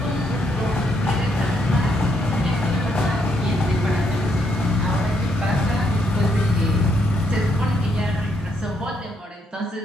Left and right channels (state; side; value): normal; both; correlation 0.75